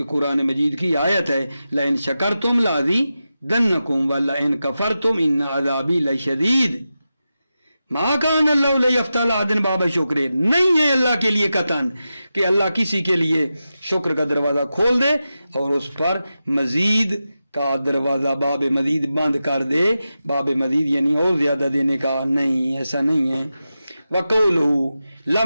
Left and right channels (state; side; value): inverted; both; correlation -0.92